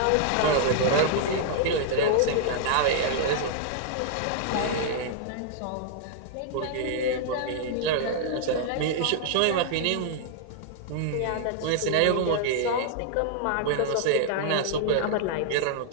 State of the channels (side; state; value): both; different; correlation -0.01